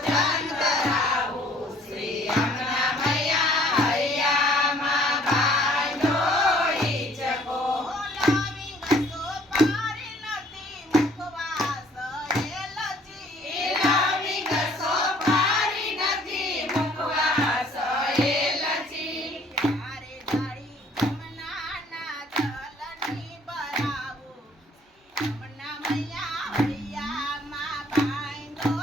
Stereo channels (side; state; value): both; normal; correlation 0.58